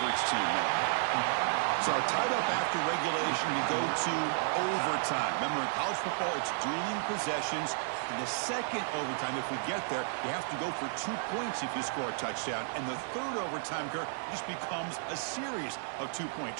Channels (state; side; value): silent; left; digital silence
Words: team there. So tied up after regulation, we go to overtime. Remember, in college football, it's dueling possessions. In the second overtime, if we get there, you have to go for 2 points if you score a touchdown. And the third overtime, Kirk, just becomes a series of 2-point